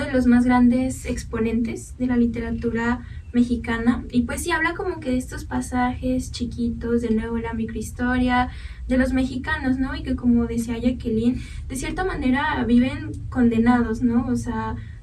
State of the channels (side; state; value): both; identical; correlation 1.00